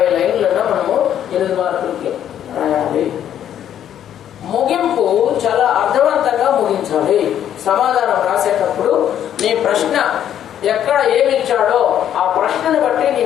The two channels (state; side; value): quieter; right; 10.3 dB